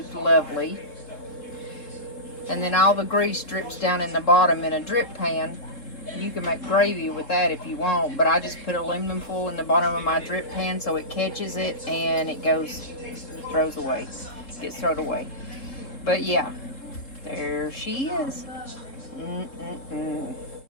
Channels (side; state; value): right; late; 3.7 ms